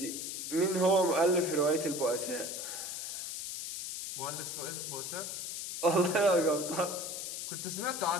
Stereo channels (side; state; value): left; noise; hiss, 5 dB below the sound